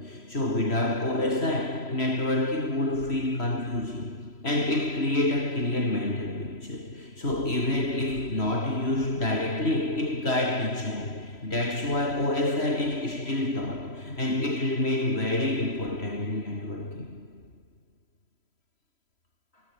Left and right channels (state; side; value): late; right; 3.0 ms